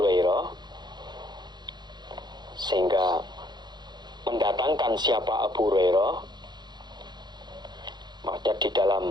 sehingga mendatangkan siapa Abu Hurairah. Maksudnya di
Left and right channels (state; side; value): late; left; 0.21 ms